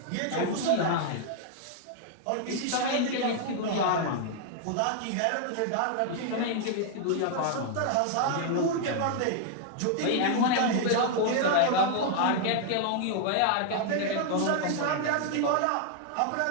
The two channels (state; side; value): different; both; correlation 0.00